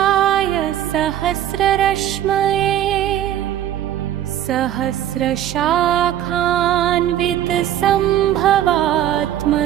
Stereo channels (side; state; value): left; quieter; 11.6 dB